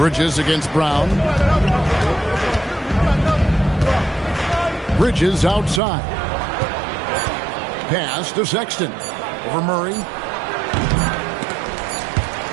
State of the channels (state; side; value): drops out; left; at 5.8 s